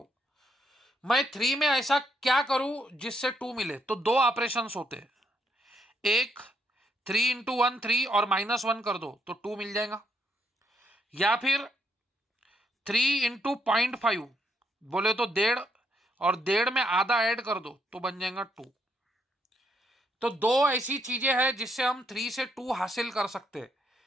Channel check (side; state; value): both; normal; correlation 0.74